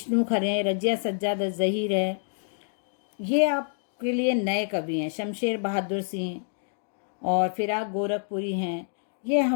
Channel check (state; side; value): silent; right; digital silence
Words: खरे, रजिया सज्जाद जहीर है, ये आपके लिए नए कवि हैं। शमशेर बहादुर सिंह और फिराक गोरखपुरी हैं, ये